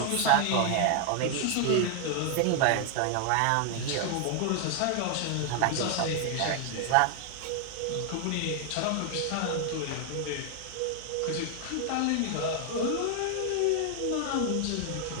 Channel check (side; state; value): both; different; correlation 0.00